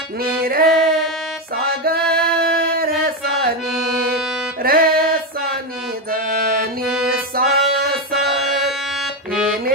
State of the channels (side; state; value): both; normal; correlation 0.10